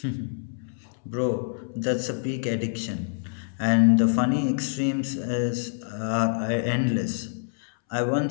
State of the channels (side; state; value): right; silent; 61 dB below the other